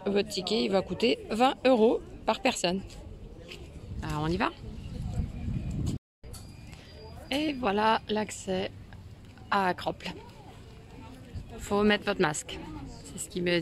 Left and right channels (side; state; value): both; identical; correlation 1.00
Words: votre ticket, il va coûter 20 € par personne. Alors on y va. Et voilà l'accès à Acropole. Faut mettre votre masque. C'est ce qu'il me